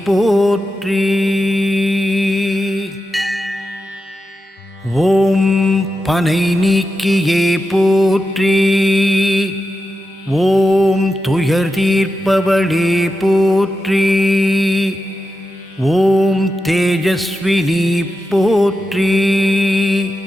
போற்றி, ஓம் பனை நீக்கியே போற்றி, ஓம் துயர் தீர்ப்பவளே போற்றி, ஓம் தேஜஸ்வினி போற்றி,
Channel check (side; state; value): both; normal; correlation 0.90